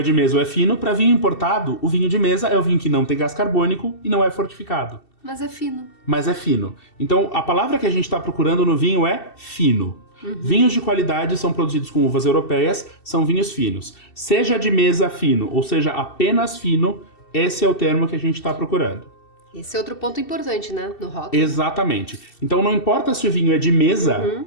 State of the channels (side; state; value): right; late; 2.7 ms